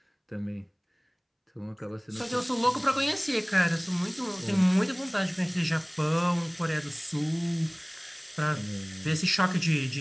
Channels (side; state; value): both; identical; correlation 1.00